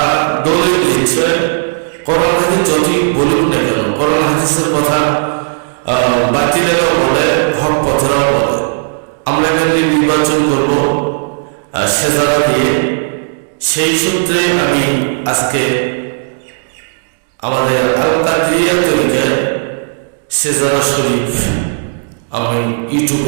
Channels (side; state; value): left; silent; digital silence